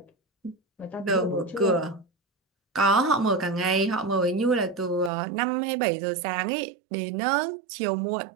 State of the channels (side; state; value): left; drops out; at 5.1 s